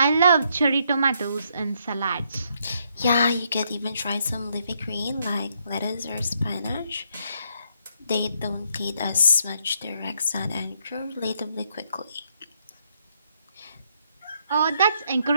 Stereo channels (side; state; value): both; inverted; correlation -0.74